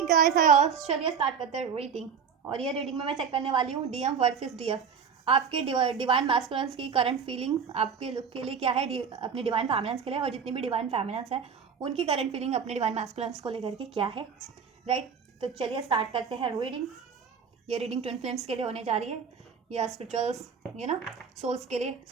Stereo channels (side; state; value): left; quieter; 6.6 dB